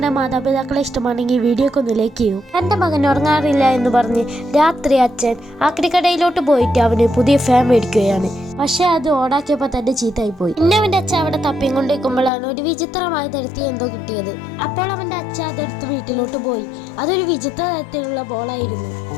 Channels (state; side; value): drops out; right; at 12.3 s